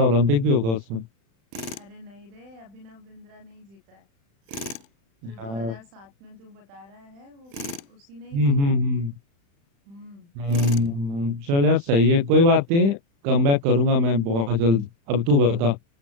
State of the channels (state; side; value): late; left; 35 ms